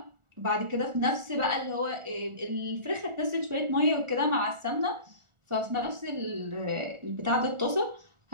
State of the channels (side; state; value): left; late; 1.4 ms